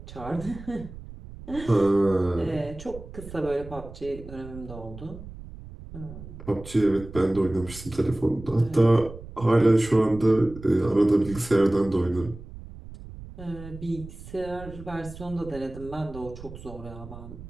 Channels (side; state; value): right; noise; rumble, 14 dB below the sound